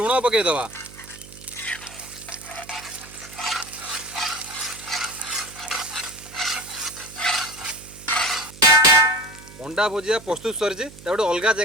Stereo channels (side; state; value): right; noise; hum, 19 dB below the sound